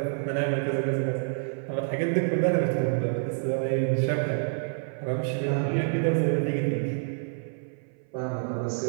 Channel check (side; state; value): left; silent; 58 dB below the other